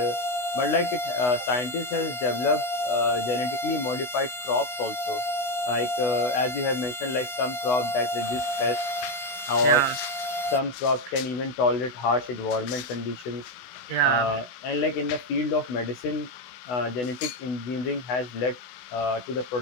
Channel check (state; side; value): late; right; 16 ms